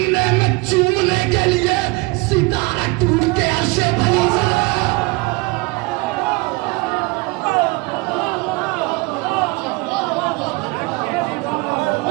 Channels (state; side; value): quieter; left; 25.7 dB